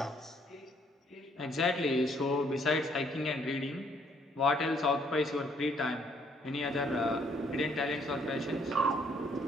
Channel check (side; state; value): both; normal; correlation 0.66